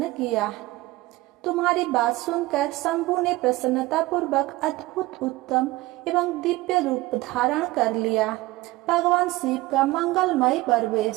किया। तुम्हारी बात सुनकर शंभु ने प्रसन्नता पूर्वक अद्भुत उत्तम एवं दिव्य रूप धारण कर लिया। भगवान शिव का मंगलमय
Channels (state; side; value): quieter; left; 19.3 dB